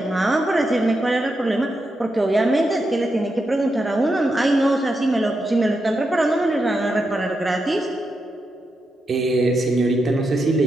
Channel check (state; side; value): normal; both; correlation 0.86